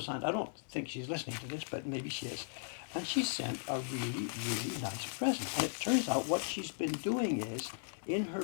I don't think she's listening to this, but maybe she is. And she sent a really, really nice present. And it turns out what she's been doing is, in her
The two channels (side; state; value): right; silent; 53 dB below the other